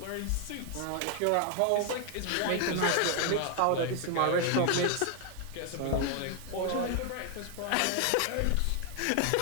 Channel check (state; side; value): different; both; correlation 0.01